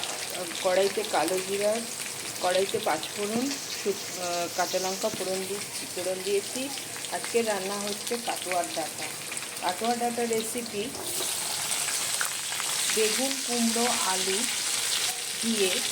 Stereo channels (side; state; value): both; identical; correlation 1.00